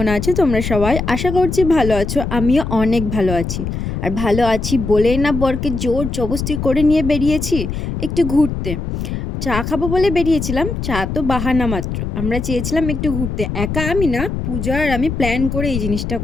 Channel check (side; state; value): left; noise; rumble, 4 dB below the sound